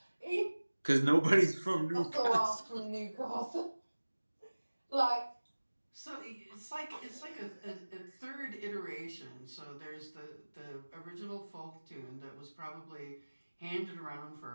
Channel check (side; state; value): both; inverted; correlation -1.00